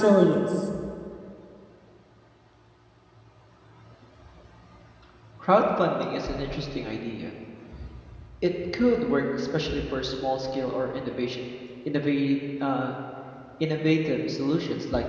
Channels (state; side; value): identical; both; correlation 1.00